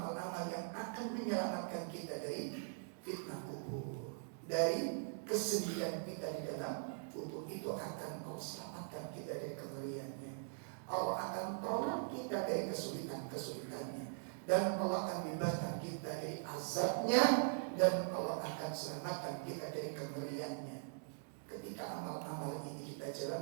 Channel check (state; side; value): silent; left; digital silence